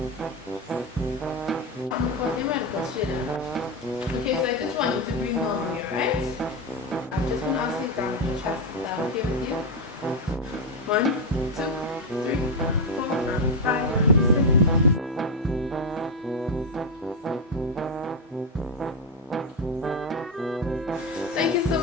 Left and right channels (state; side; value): normal; both; correlation 0.08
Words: I'm currently a medical student. Okay, so I just want you to breathe normally, alright? I'm just going to ask you to examine your chest. Is that okay with you? 1, 2, 3, 4, and 5, and 6. Thank you so